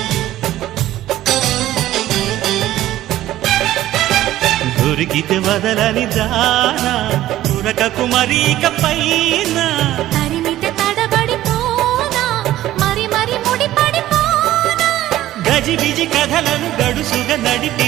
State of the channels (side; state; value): left; quieter; 14.2 dB